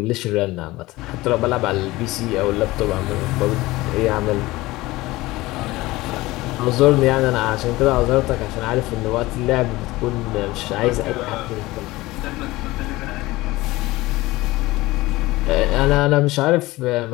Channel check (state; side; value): quieter; right; 19.4 dB